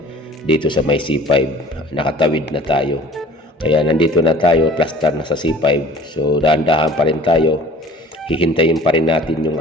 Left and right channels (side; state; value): both; normal; correlation 0.48